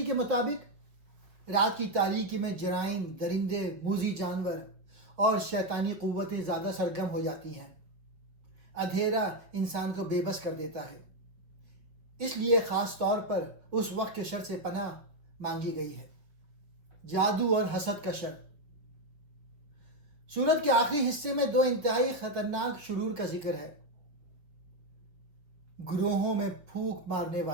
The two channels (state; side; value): late; left; 5.0 ms